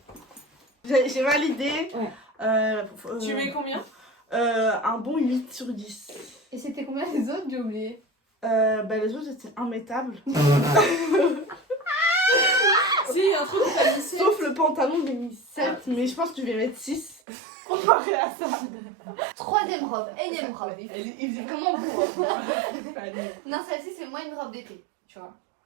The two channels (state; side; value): drops out; left; at 17.2 s